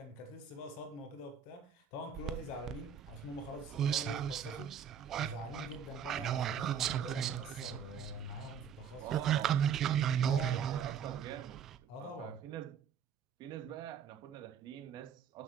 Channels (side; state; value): left; quieter; 7.7 dB